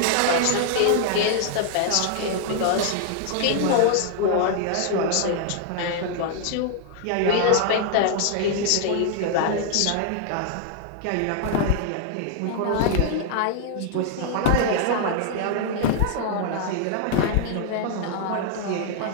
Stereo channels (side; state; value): both; different; correlation 0.00